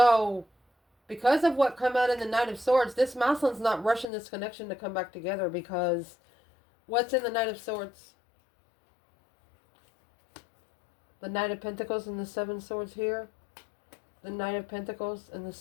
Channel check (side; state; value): right; drops out; at 4.0 s